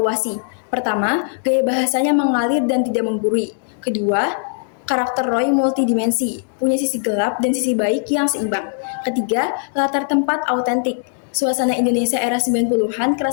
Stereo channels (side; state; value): right; silent; digital silence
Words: Pertama, gaya bahasanya mengalir dan tidak menggurui. Kedua, karakter Roy multidimensi, punya sisi gelap dan sisi baik yang seimbang. Ketiga, latar tempat autentik. Suasana Indonesia era 90-an